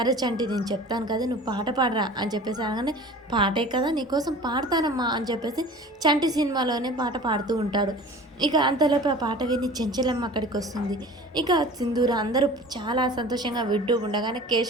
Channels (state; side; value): normal; both; correlation 0.41